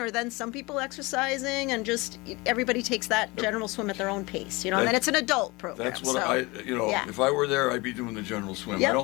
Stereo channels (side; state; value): right; quieter; 24.2 dB